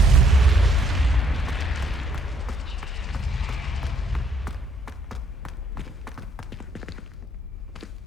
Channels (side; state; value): both; normal; correlation 0.67